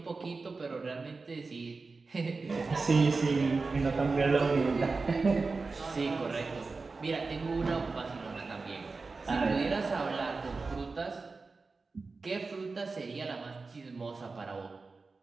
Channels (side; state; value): left; quieter; 4.0 dB